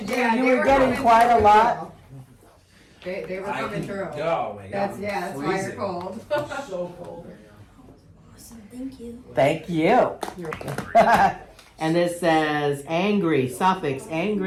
do. You were getting quite a lot. They were I coming can- through. Oh my god. That's why you're Freezing. cold. So cold right now. Awesome, thank you. Thank you. And this says angry, suffix,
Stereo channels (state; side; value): identical; both; correlation 1.00